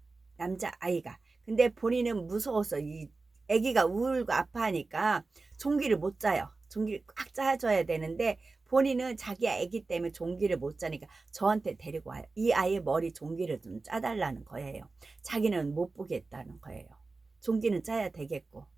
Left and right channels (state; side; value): quieter; left; 3.7 dB